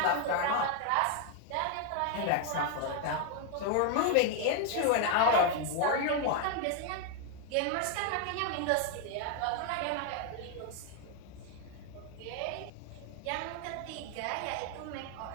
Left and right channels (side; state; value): both; different; correlation 0.01